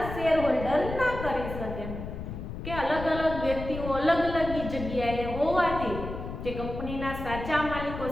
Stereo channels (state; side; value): noise; left; rumble, 8 dB below the sound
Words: શેર હોલ્ડર ના કરી શકે કે અલગ અલગ વ્યક્તિઓ અલગ અલગ જગ્યાએ હોવાથી જે કંપનીના સાચા માલિકો